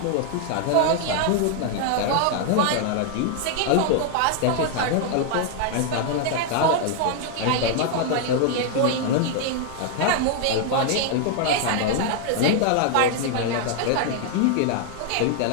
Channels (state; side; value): different; both; correlation 0.00